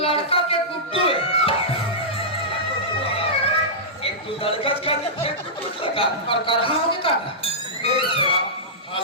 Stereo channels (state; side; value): normal; both; correlation -0.15